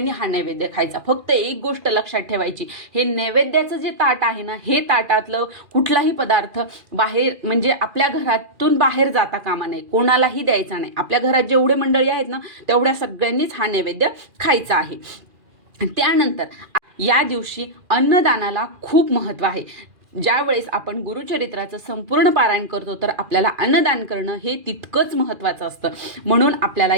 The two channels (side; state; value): left; late; 2.4 ms